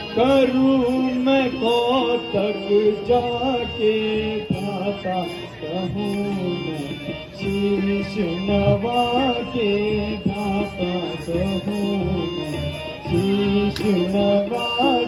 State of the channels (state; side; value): identical; both; correlation 1.00